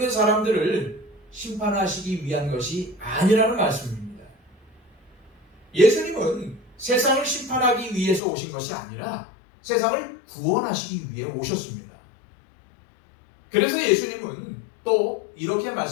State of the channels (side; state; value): right; drops out; at 8.2 s